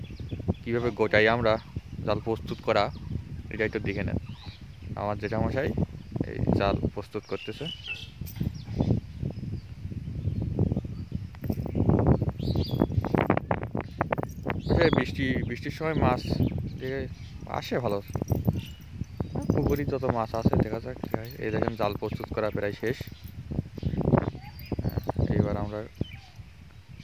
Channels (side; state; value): both; identical; correlation 1.00